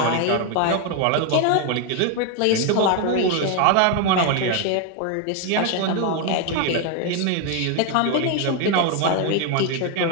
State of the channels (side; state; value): both; different; correlation 0.01